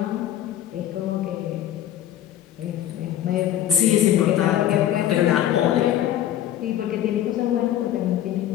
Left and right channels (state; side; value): quieter; right; 11.8 dB